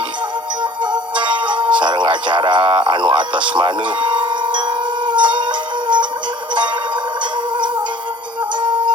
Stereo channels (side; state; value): both; normal; correlation 0.50